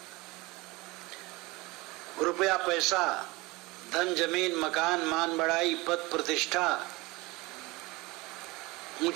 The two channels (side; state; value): left; quieter; 22.8 dB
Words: रुपया पैसा, धन, जमीन, मकान, मान बढ़ाई, पद प्रतिष्ठा,